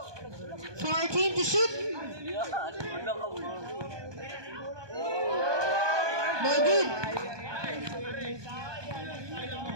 14 to shoot. No good.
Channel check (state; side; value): late; left; 1.2 ms